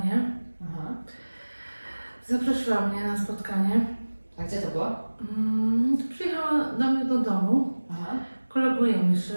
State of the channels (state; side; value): inverted; both; correlation -1.00